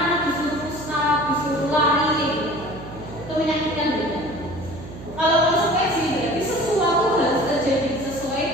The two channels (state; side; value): noise; right; hum, 14 dB below the sound